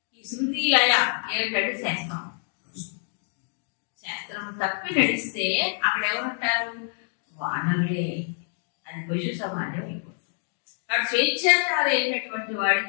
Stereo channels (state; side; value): silent; right; 56 dB below the other